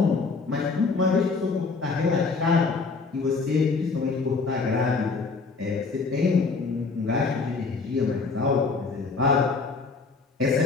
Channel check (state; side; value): quieter; right; 4.3 dB